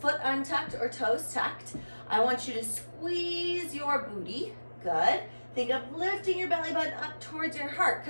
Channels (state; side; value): inverted; both; correlation -1.00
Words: untucked or toes tucked, I want you to squeeze your booty. Good. Think of lifting your belly button up towards your heart,